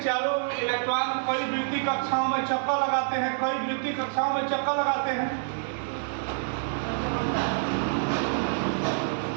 चारों ओर इलेक्ट्रॉन कई वृत्ति कक्षाओं में चक्कर लगाते हैं, कई वृत्ति कक्षाओं में चक्कर लगाते हैं,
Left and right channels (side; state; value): left; silent; digital silence